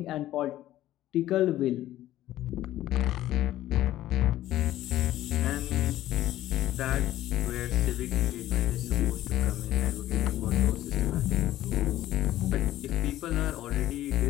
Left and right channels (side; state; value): right; quieter; 14.0 dB